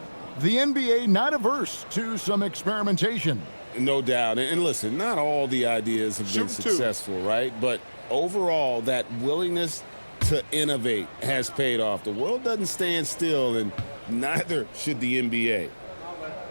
the NBA not averse to some experimentation. No doubt. And listen, not all the ideas have been successful, right? But overall, that willingness to innovate has paid off. The world doesn't stand still, and neither should the NBA.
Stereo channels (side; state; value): both; inverted; correlation -1.00